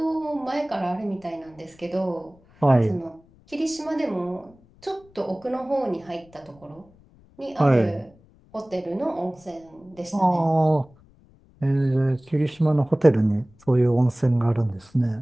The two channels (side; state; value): left; noise; rumble, 28 dB below the sound